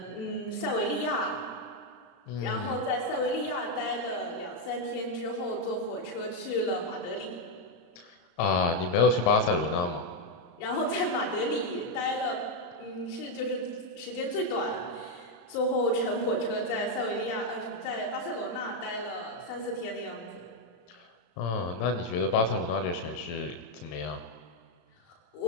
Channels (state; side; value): late; right; 34 ms